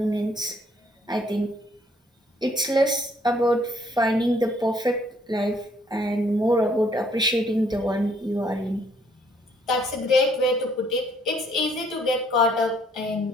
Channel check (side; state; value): both; normal; correlation 0.65